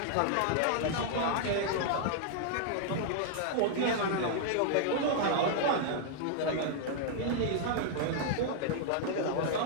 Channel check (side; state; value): both; different; correlation -0.01